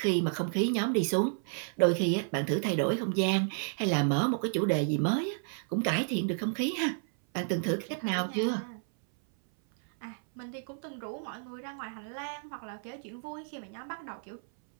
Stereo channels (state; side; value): silent; left; 57 dB below the other